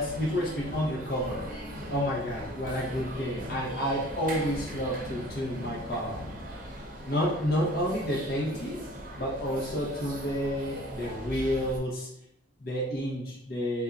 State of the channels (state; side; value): normal; both; correlation 0.49